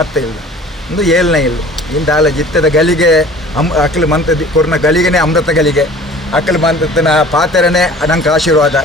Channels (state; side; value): normal; both; correlation 0.46